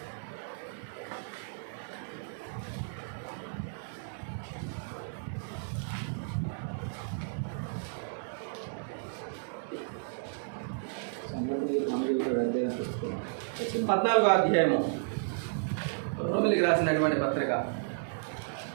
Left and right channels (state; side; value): silent; left; digital silence